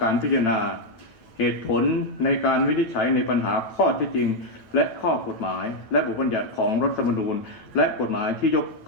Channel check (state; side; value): late; right; 9.1 ms